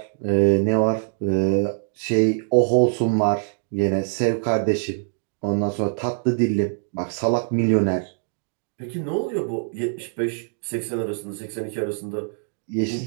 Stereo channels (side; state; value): left; silent; digital silence